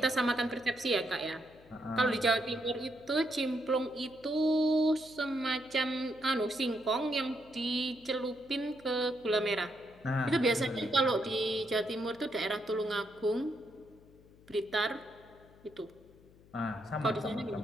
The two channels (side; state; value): left; noise; hum, 25 dB below the sound